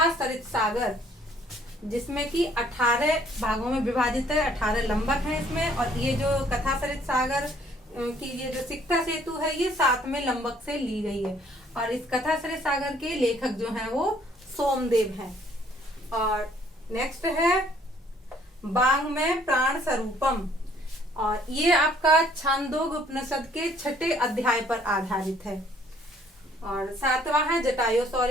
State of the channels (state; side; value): normal; both; correlation 0.61